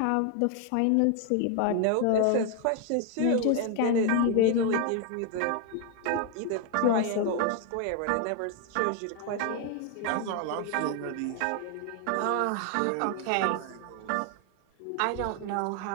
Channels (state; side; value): different; both; correlation 0.01